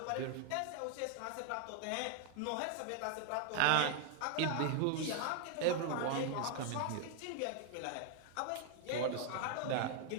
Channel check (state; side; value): different; both; correlation 0.00